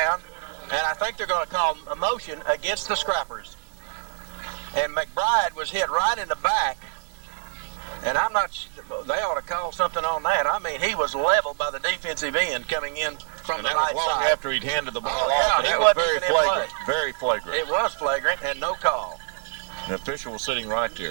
And I think they're going to call a motion against the Scrappers. And McBride was hit right in the back. And I'm not, they ought to call something on that. I mean, he was leveled by the defensive end coming in from the right side. After he'd handed the ball off. And that was very flagrant. Very flagrant. It was flagrant and no call. The official was sitting right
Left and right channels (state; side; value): silent; left; digital silence